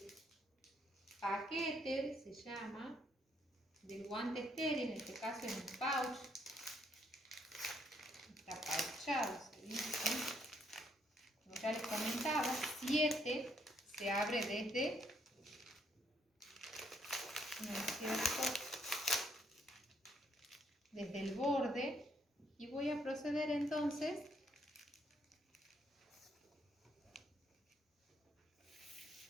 paquete, se llama, del guante estéril, en este caso es un pouch, está pouchado, se dice. Como ya les comentaba, 7 se abre desde, ¿no es cierto?, desde el borde, y voy a proceder entonces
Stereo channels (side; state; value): both; normal; correlation 0.71